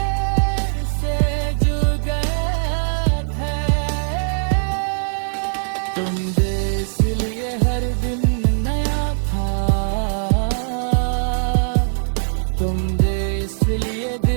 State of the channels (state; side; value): silent; left; digital silence